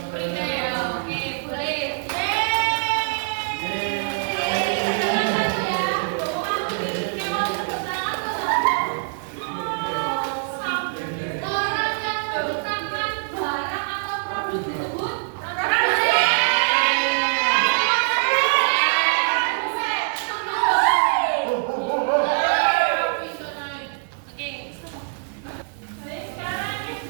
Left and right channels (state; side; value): silent; left; 63 dB below the other